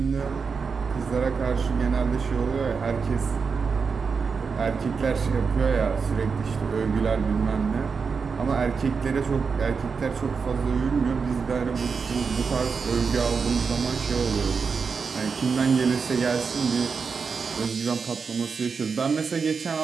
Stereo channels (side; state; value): left; quieter; 5.4 dB